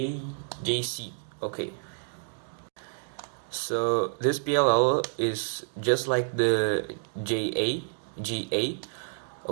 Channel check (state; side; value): silent; left; digital silence